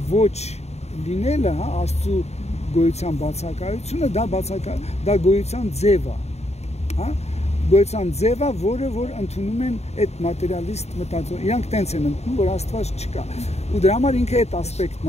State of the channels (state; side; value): late; right; 0.31 ms